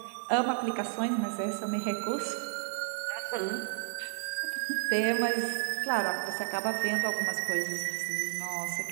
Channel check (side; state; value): left; silent; digital silence